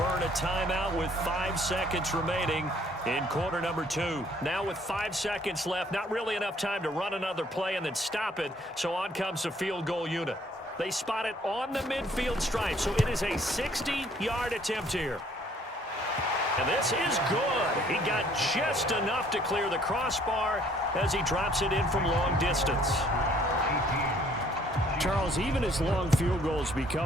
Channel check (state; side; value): normal; both; correlation 0.61